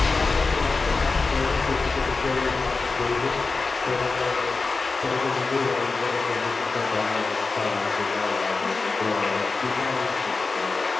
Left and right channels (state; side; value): quieter; right; 4.0 dB